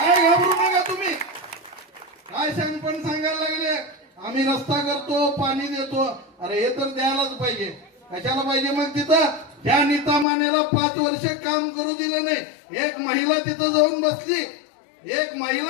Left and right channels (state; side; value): drops out; right; at 10.2 s